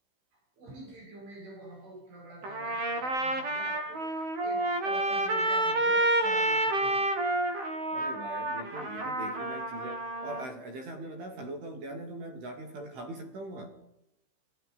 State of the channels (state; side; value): late; left; 16 ms